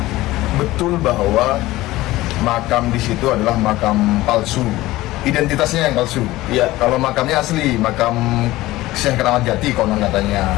betul bahwa makam di situ adalah makam palsu, identitasnya yang palsu. Iya. Kalau makamnya asli, makam Syekh Keramat Jati konon katanya.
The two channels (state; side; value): quieter; right; 17.7 dB